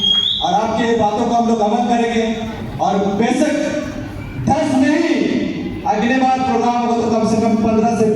और आपके बातों को हम लोग अमल करेंगे, और बेशक 10 नहीं, अगले बार प्रोग्राम हो तो कम से कम 15 से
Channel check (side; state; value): both; identical; correlation 1.00